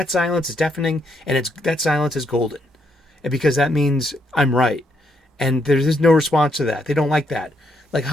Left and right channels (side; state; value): both; normal; correlation 0.75